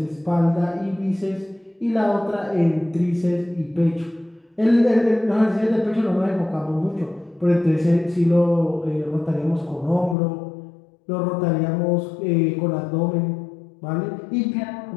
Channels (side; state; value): right; drops out; at 10.2 s